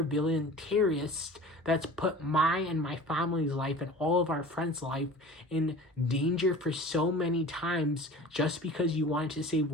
terrorist that's put my and my family's life and all of our friends' life in danger for so many times just because you wanted to save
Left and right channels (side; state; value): both; normal; correlation 0.40